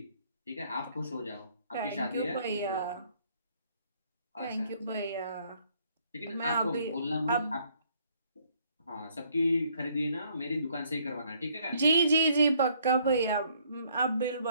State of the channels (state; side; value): inverted; both; correlation -0.65